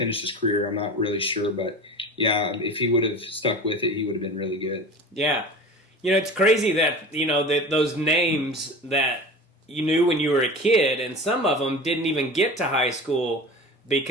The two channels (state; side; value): normal; both; correlation 0.34